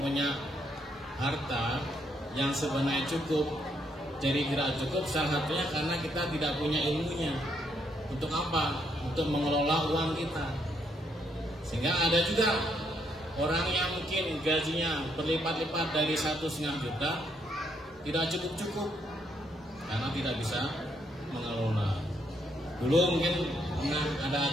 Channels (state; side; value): normal; both; correlation 0.74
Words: harta yang sebenarnya cukup, jadi tidak cukup salah satunya karena kita tidak punya ilmunya. Untuk apa? Untuk mengelola uang kita. Sehingga ada juga orang yang mungkin gajinya berlipat-lipat dari 1,5 juta, tidak cukup-cukup karena tidak bisa mengelola. Dulu mungkin pernah ada